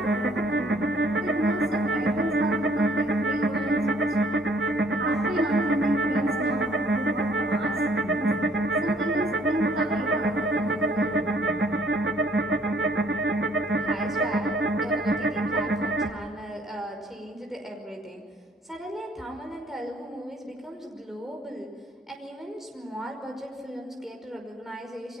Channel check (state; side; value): normal; both; correlation 0.62